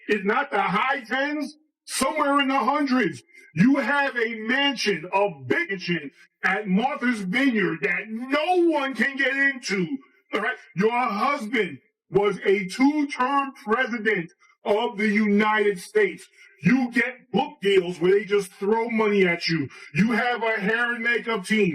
it's not the high tens, somewhere in the hundreds. You have a mansion, a big mansion at Martha's Vineyard that no one can get into. All right. Your husband was a 2-term president of the United States. You get book deals where they just throw money at you. You have a hair and makeup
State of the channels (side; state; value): both; identical; correlation 1.00